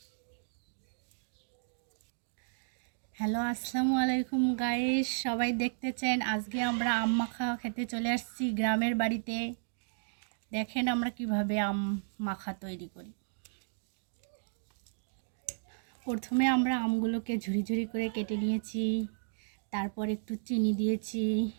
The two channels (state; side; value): silent; left; digital silence